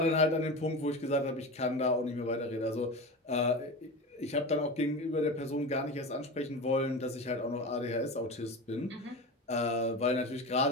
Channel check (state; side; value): normal; both; correlation 0.26